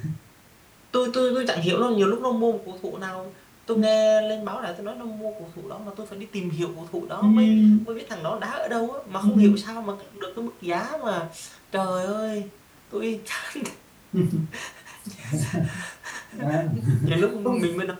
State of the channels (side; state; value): both; identical; correlation 1.00